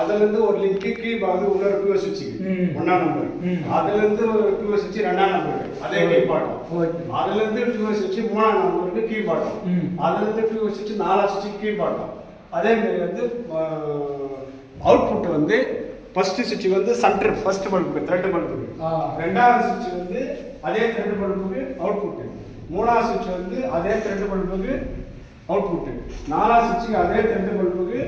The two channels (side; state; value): both; identical; correlation 1.00